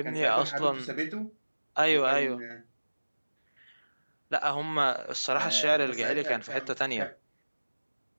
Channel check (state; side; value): inverted; both; correlation -1.00